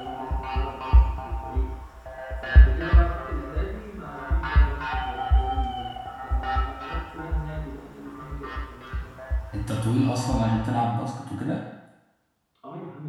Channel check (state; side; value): identical; both; correlation 1.00